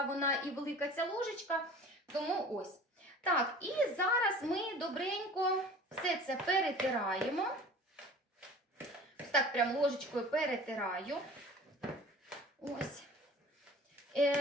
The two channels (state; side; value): normal; both; correlation 0.43